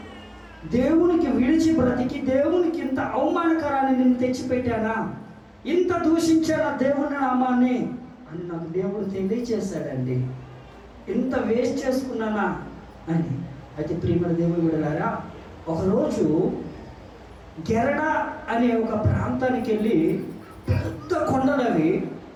దేవునికి విడిచి బ్రతికి దేవునికి ఇంత అవమానకరాన్ని నేను తెచ్చిపెట్టానా, ఇంత దూషించానా దేవుని నామాన్ని అని నాకు దేవుడు తెలియచేశాడండి. ఇంత వేస్ట్ చేసుకున్నానా అని. అయితే ప్రియమైన దేవుని బిడ్డలారా, ఒకరోజు గెరడ అనే ఒక ప్రాంతానికి వెళ్ళి, పెద్ద కొండలవి,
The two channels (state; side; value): identical; both; correlation 1.00